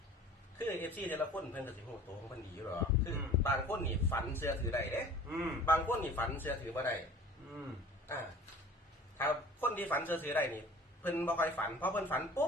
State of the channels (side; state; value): both; normal; correlation 0.46